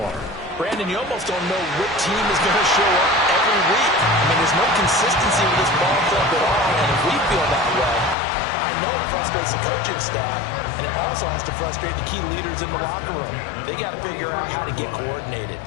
Brandon, you almost don't know what team is going to show up every week. I mean, there's no consistency with this ball club at all, and if we feel that way, I know it frustrates the coaching staff, and it also has to frustrate the key leaders in the locker room. They got to figure out how to get coordinated.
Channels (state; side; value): drops out; right; at 8.2 s